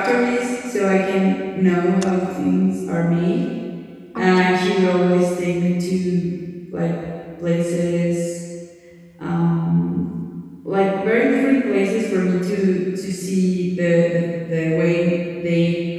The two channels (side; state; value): both; identical; correlation 1.00